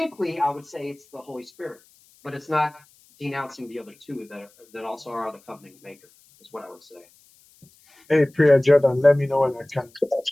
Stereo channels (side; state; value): left; noise; hiss, 30 dB below the sound